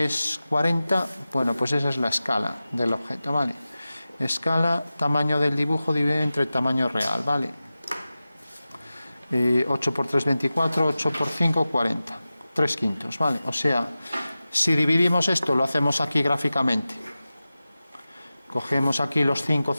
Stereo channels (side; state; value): both; inverted; correlation -0.95